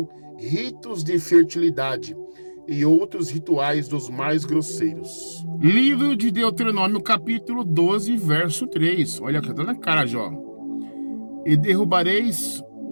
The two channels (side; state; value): both; inverted; correlation -1.00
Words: ritos de fertilidade e outros rituais dos mais grosseiros. Livro de Deuteronômio, capítulo 12, verso 3. Olha aqui, tá na cara, Jó. E derrubareis